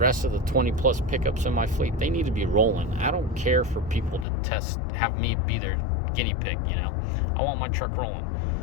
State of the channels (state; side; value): drops out; right; at 4.2 s